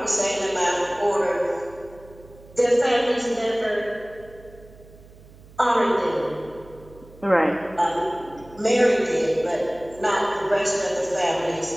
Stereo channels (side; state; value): right; noise; hum, 22 dB below the sound